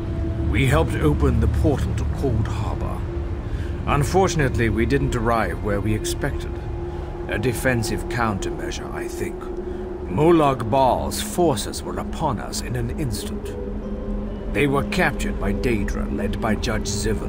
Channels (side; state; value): both; identical; correlation 1.00